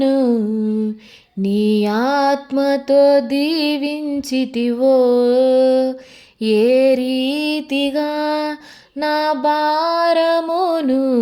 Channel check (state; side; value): identical; both; correlation 1.00